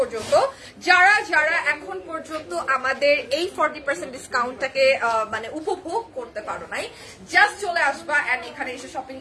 যারা যারা এখন পর্যন্ত আমাদের এই 40% ডিসকাউন্টটাকে মানে উপভোগ করতে পারো নাই, জাস্ট চলে আসবা এন্ড এখানে এসে শপিং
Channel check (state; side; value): identical; both; correlation 1.00